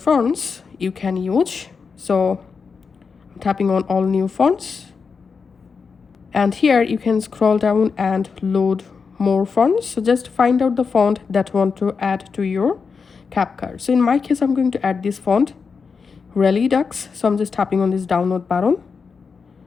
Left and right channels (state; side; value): quieter; right; 5.3 dB